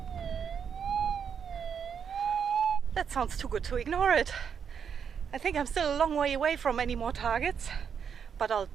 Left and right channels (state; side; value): quieter; left; 7.3 dB